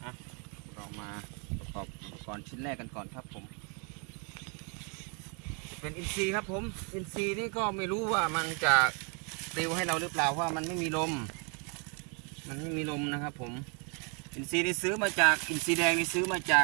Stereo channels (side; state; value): left; quieter; 35.7 dB